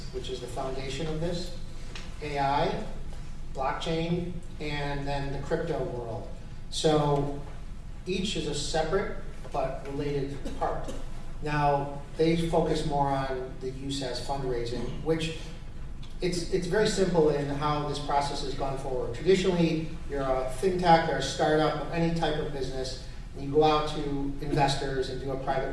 which is the foundation of this, AI, blockchain, and then the crypto world. So each is a separate but related part. Now, they focus more on the use as fundraising, which it's very simple in how this process has gone forward. Traditionally, you're a fintech or a startup of any type of business, and you go out to investors and do a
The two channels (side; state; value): both; identical; correlation 1.00